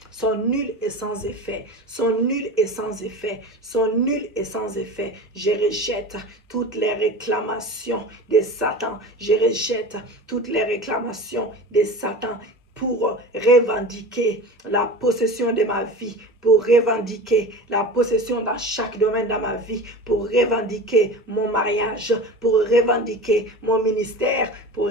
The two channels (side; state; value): both; normal; correlation 0.33